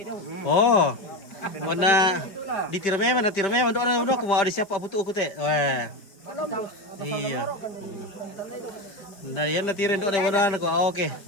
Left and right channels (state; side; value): late; right; 5.1 ms